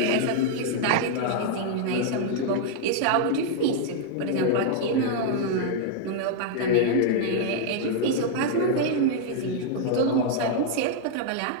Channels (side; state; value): both; different; correlation 0.00